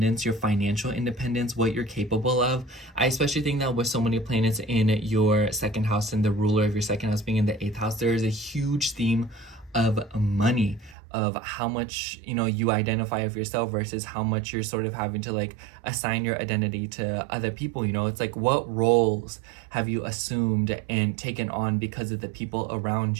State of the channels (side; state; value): left; drops out; at 11.0 s